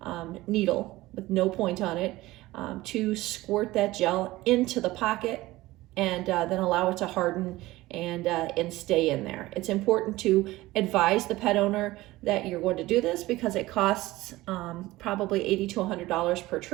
needle with no point on it, to squirt that gel into the pocket and then allow it to harden and stay in there. It's important to advise the pet owner that you're going to do this because it costs probably $80 to $100 per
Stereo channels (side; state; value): left; quieter; 18.3 dB